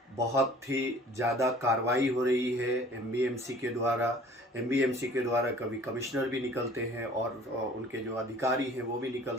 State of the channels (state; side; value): normal; both; correlation 0.50